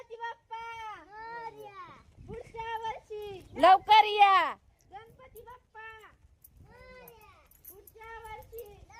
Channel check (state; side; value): identical; both; correlation 1.00